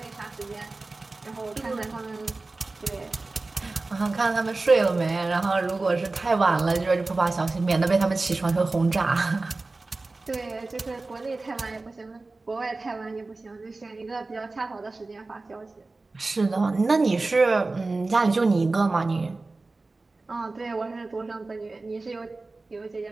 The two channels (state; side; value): quieter; left; 3.4 dB